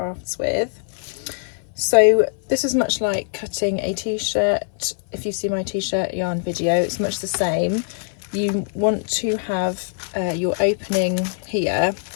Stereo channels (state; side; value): silent; right; 57 dB below the other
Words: with. So this is much like cutting a t-shirt. If you see my t-shirt yarn video, it's much the same. You want to have your opening here,